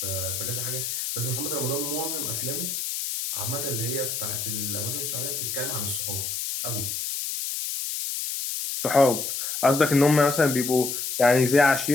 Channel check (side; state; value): left; noise; hiss, 3 dB below the sound